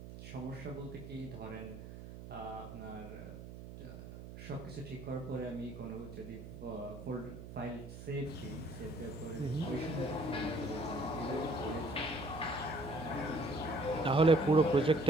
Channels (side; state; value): right; noise; hum, 12 dB below the sound